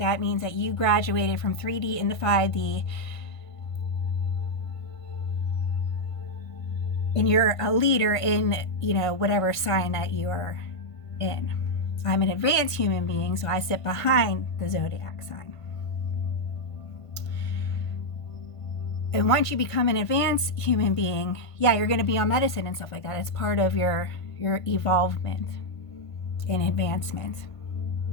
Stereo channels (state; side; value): late; right; 1.5 ms